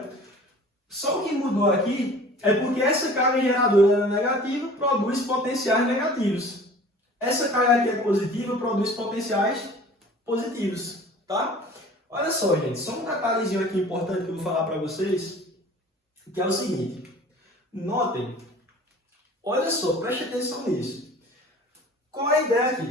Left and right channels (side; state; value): both; normal; correlation 0.45